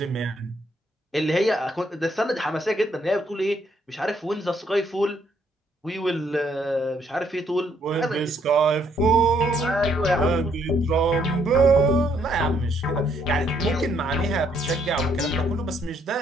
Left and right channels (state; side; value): normal; both; correlation 0.70